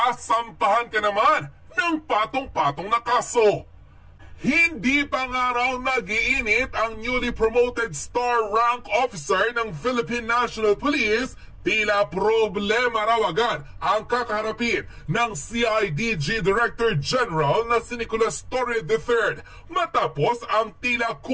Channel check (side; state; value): both; identical; correlation 1.00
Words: ka naman ng patong-patong na kaso. Hindi pa nga raw nag-iinit ang newly promoted star rank officer ng Philippine National Police. Tila problema raw agad ang kakaharapin ng CIDG Director General na si Nicolas Torre III matapos ang tila